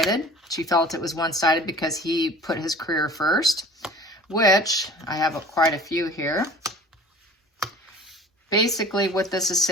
She felt it was one-sided because he put his career first, which I have quite a few here. Basically what this is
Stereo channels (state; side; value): normal; both; correlation 0.45